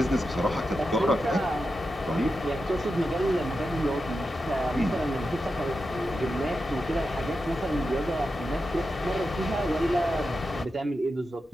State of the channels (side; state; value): both; normal; correlation 0.89